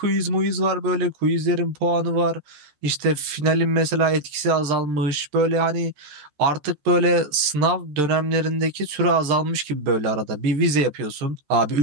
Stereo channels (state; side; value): late; left; 14 ms